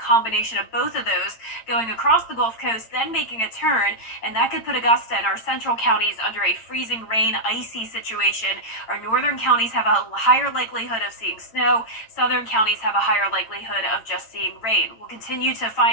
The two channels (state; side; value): late; right; 8.8 ms